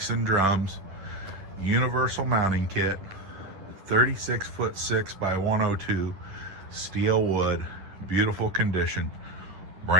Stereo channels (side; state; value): left; late; 10 ms